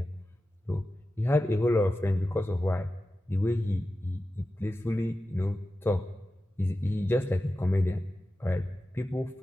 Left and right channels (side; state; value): both; normal; correlation 0.93